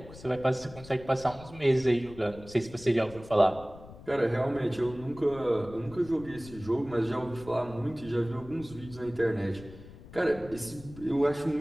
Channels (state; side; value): noise; left; rumble, 17 dB below the sound